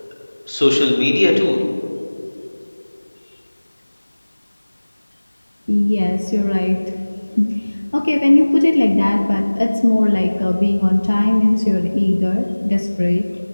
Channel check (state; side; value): inverted; both; correlation -1.00